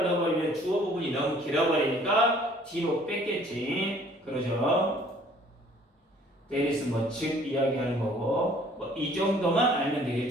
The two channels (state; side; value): normal; both; correlation 0.56